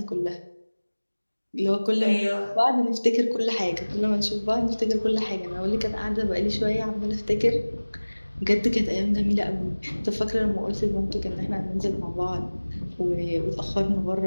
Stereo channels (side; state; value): both; inverted; correlation -1.00